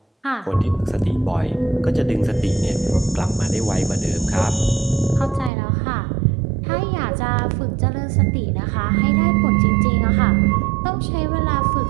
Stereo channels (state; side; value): drops out; left; at 5.5 s